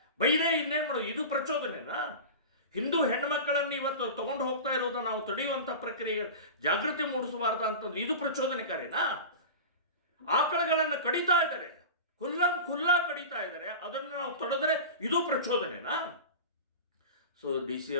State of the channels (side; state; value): both; inverted; correlation -0.30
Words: ಬೈರೇ ಇನ್ನೇನು ಮಾಡೋದು? ಇದು ಪ್ರಚೋದನೆನಾ? ಹಿಂದೂ ಹೆಣ್ಣುಮಕ್ಕಳನ್ನು ಇವತ್ತು ತಗೊಂಡು ಹೋಗ್ತಾ ಇರೋದು ನಾವು ತಡೆಯುವಂಥ ಪ್ರಕ್ರಿಯೆ ಜಾಗೃತಿ ಮೂಡಿಸಬಾರ್ದು ಅಂತಂದ್ರೆ ಇದು ಪ್ರಚೋದನೆಕಾರಿನಾ? ಆಕಳಗಳನ್ನು ಕಡಿತಾ ಇದ್ದಾರೆ, ಖುಲ್ಲಾ ಕಡಿತಾ ಇದ್ದಾರೆ, ಅದನ್ನು ನಾವು ತಡೆದ್ರೆ ಇದು ಪ್ರಚೋದನೆನಾ? ಸೊ DC